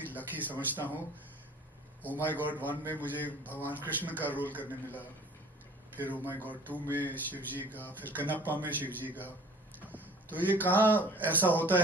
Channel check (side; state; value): both; normal; correlation 0.49